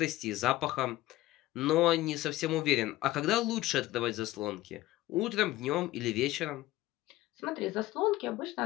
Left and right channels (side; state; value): right; quieter; 16.7 dB